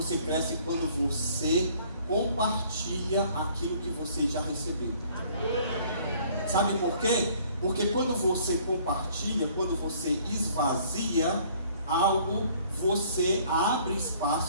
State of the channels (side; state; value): both; inverted; correlation -0.58